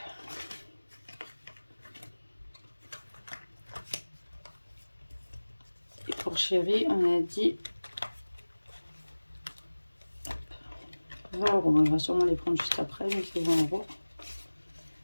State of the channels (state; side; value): inverted; both; correlation -1.00